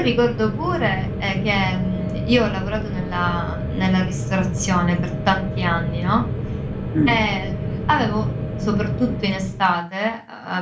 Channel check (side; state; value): both; identical; correlation 1.00